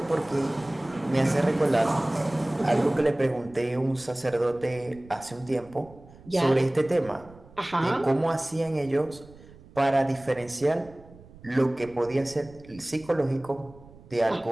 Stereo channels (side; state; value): right; noise; rumble, 22 dB below the sound